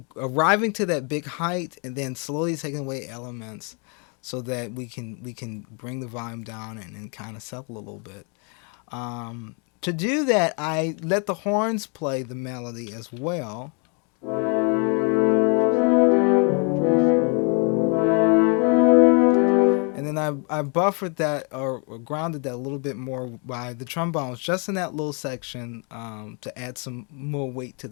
arriving to that big height and then slowly taking away elements so that we can bring the volume down and kind of settle a little bit. To do that, I let the horns play the melody as well. And then I buffered that or grounded that a little bit more by the trombones just in that little section to add some more weight to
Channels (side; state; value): right; quieter; 36.4 dB